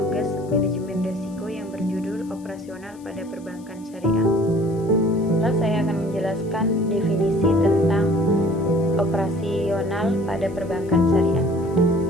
manajemen risiko yang berjudul operasional pada perbankan syariah. Lalu saya akan menjelaskan definisi tentang operasional pada perbankan syariah.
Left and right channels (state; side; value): noise; left; hiss, 27 dB below the sound